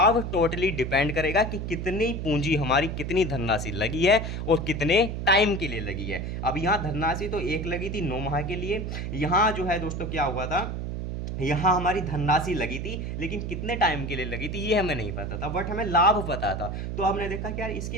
टोटली डिपेंड करेगा कि कितनी पूंजी हमारी, कितनी धनराशि लगी है और कितने टाइम के लिए लगी है। अब यहाँ धनराशि तो 1 लगी थी 9 माह के लिए, यहाँ जो है दोस्तों क्या हुआ था, यहाँ हमारी धनराशि लगी थी, लेकिन कितने टाइम के लिए लगी थी ये हमें नहीं पता था, बट हमें लाभ पता था। तो हमने देखा कि यार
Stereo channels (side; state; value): right; noise; hum, 4 dB below the sound